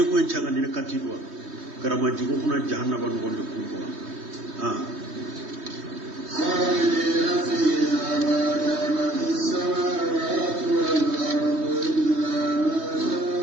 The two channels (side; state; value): left; late; 3.2 ms